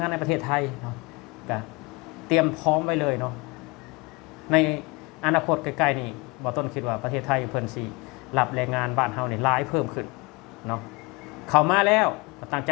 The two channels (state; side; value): quieter; right; 26.4 dB